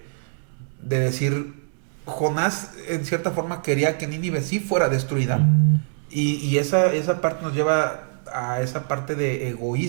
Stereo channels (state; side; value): silent; left; digital silence